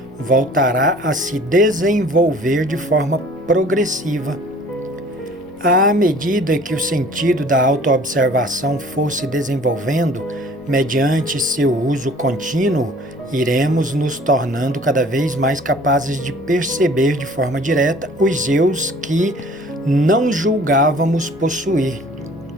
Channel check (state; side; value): noise; left; rumble, 29 dB below the sound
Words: voltará a se desenvolver de forma progressiva. À medida que o sentido da autoobservação for se desenvolvendo, mediante seu uso contínuo, iremos nos tornando cada vez mais capazes de perceber de forma direta os eus que não julgávamos possuir.